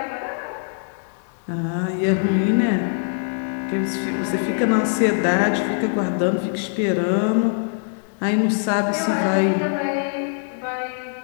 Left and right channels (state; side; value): silent; right; digital silence